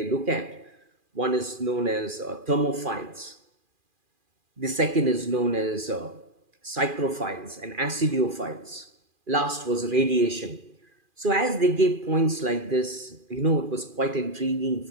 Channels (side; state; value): left; late; 2.4 ms